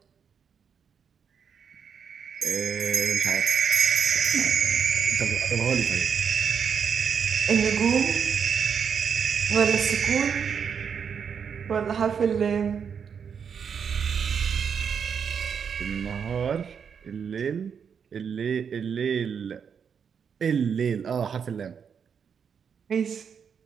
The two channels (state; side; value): quieter; left; 7.0 dB